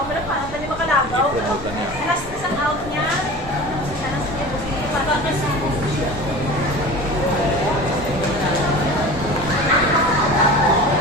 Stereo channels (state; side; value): normal; both; correlation 0.36